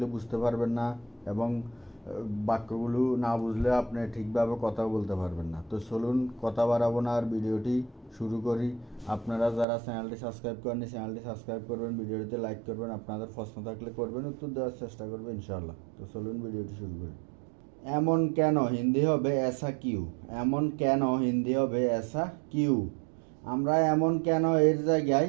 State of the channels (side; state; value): left; drops out; at 9.7 s